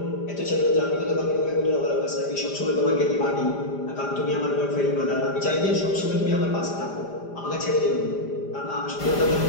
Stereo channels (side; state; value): right; late; 5.0 ms